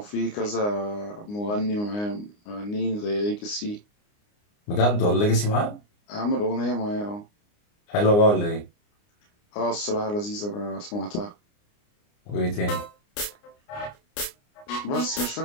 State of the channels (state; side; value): late; right; 29 ms